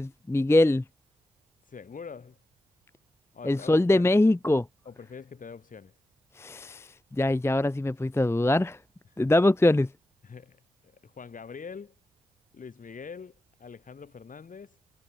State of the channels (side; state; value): both; normal; correlation 0.92